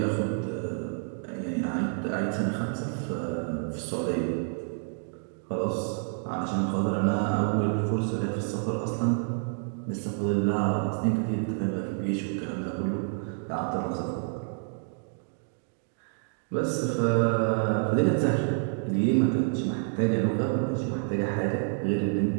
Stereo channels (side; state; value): left; silent; 59 dB below the other